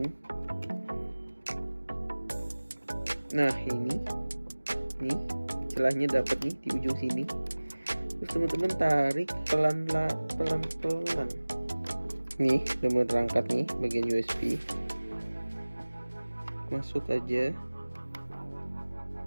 Nah, ini nih celahnya dapat nih di ujung sini. Terus teman-teman tarik pelan-pelan. Nih, udah terangkat nih bagian USB. Masuk aja.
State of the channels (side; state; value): both; inverted; correlation -1.00